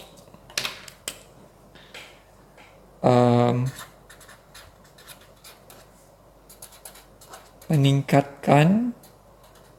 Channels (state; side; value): identical; both; correlation 1.00